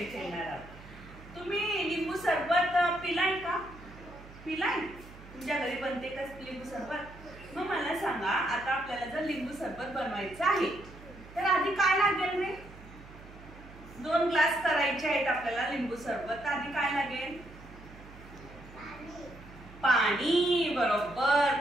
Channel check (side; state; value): right; noise; hum, 18 dB below the sound